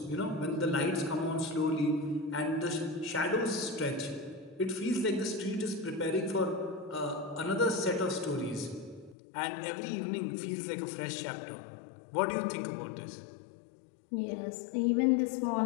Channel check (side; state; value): right; drops out; at 9.2 s